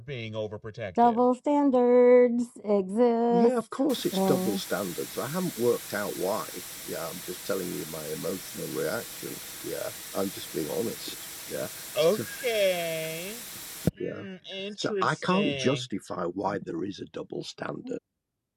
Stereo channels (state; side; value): identical; both; correlation 1.00